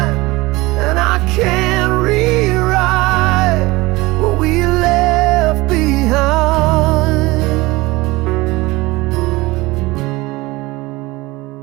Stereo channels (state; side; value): quieter; left; 21.4 dB